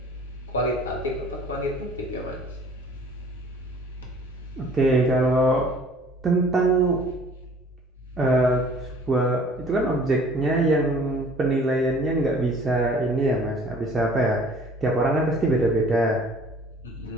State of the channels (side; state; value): both; normal; correlation 0.52